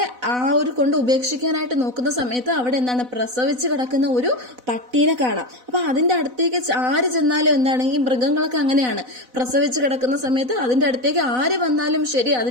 ആ ഒരു കൊണ്ട് ഉപേക്ഷിക്കാനായിട്ട് നോക്കുന്ന സമയത്ത് അവിടെ എന്താണ്, പ്രസവിച്ച് കിടക്കുന്ന ഒരു പട്ടീനെ കാണാം. അപ്പൊ അതിന്റെ അടുത്തേക്ക് ആര് ചെന്നാലും എന്താണ്, ഈ മൃഗങ്ങളൊക്കെ അങ്ങനെയാണ്, പ്രസവിച്ച് കിടക്കുന്ന സമയത്ത് അതിന്റെ അടുത്തേക്ക് ആര് വന്നാലും ശരി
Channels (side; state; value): left; late; 4.0 ms